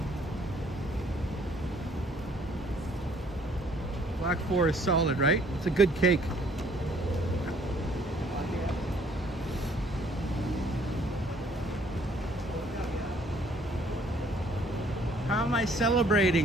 Black Forest solid, right? It's a good cake. How am I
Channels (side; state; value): both; normal; correlation 0.61